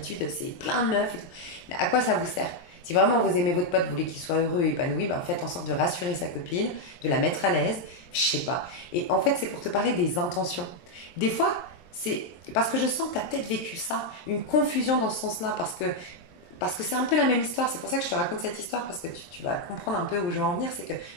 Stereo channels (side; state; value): right; late; 23 ms